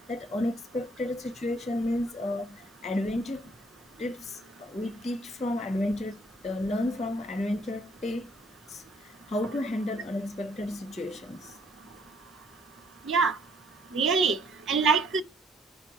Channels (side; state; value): both; normal; correlation 0.65